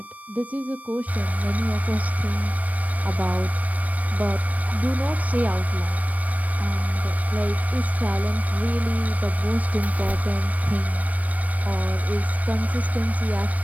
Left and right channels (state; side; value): late; left; 0.070 ms